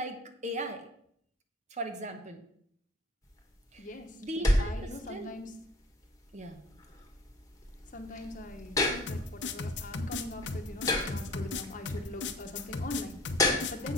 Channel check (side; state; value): both; normal; correlation 0.46